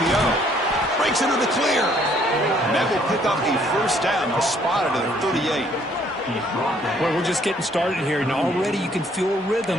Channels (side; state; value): both; normal; correlation 0.64